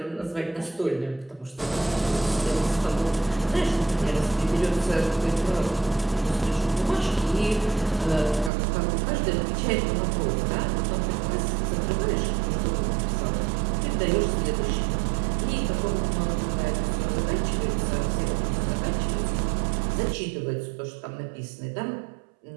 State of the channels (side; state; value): left; drops out; at 8.5 s